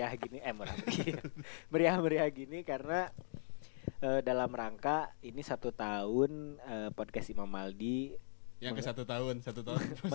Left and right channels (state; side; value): silent; right; digital silence